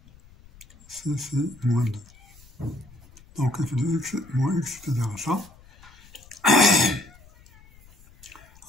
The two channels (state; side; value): noise; left; rumble, 25 dB below the sound